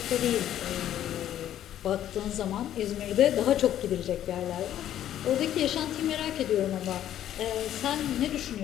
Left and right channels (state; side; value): quieter; right; 11.5 dB